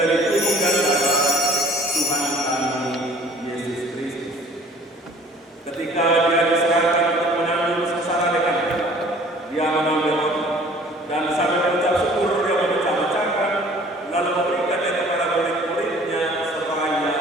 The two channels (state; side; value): normal; both; correlation 0.51